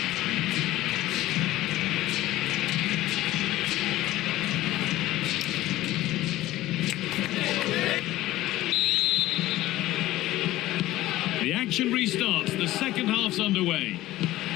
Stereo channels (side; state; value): right; quieter; 16.1 dB